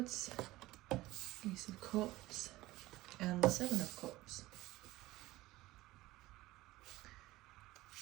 Ace of Cups, and the Seven of Cups.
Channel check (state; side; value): quieter; left; 18.1 dB